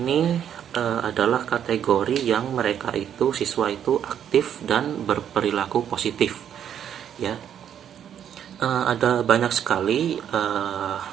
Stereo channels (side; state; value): left; quieter; 9.3 dB